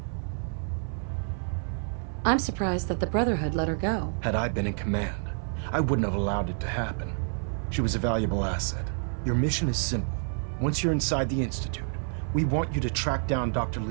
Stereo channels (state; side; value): silent; left; 59 dB below the other